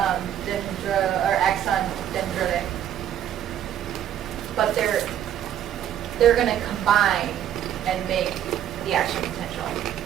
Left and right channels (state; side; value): quieter; left; 10.4 dB